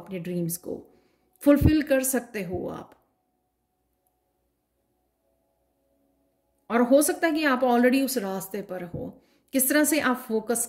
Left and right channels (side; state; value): both; identical; correlation 1.00